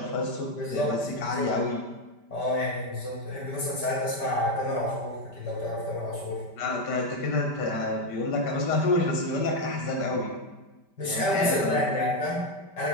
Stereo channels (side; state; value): right; late; 5.1 ms